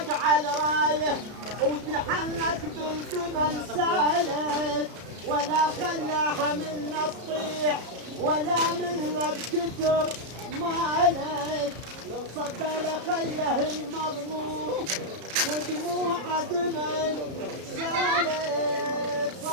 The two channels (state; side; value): late; left; 33 ms